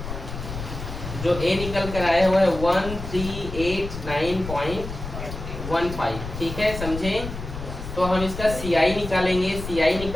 जो A निकल कर आया हुआ है 1389.15। ठीक है, समझे? तो हम इसका CI निकालेंगे। CI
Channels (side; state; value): left; noise; rumble, 8 dB below the sound